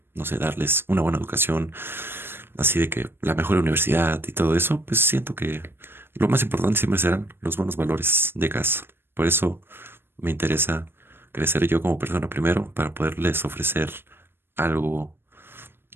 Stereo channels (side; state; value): left; late; 0.10 ms